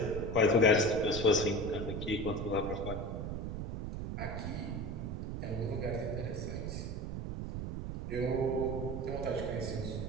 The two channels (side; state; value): right; noise; rumble, 4 dB below the sound